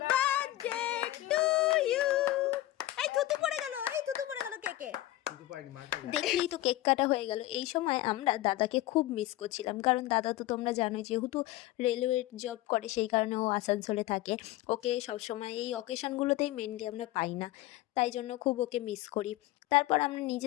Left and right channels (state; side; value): quieter; right; 16.1 dB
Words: birthday to you. এই থুতু পড়ে গেল, এই থুতু পড়ে গেল কেকে। দেখলেই তো কেক কাটা হয়ে গেল। এই সময় আমরা দাদাকে খুব মিস করছিলাম, কারণ দাদা তো তোমরা জানোই যেহেতু রেলওয়ে জব করে, সেই কারণে ও আসানসোলে থাকে। ওকে সবসময় এই অকেশনগুলোতেই মেনলি আমরা পাই না, তাই জন্য খুব ওকে মিস করি। তারপর আমরা